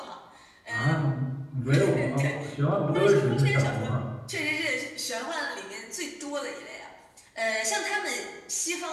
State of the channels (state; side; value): identical; both; correlation 1.00